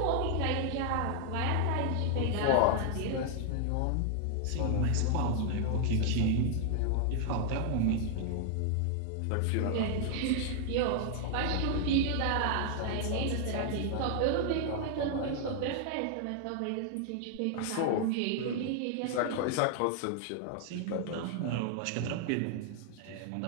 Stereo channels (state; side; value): different; both; correlation 0.00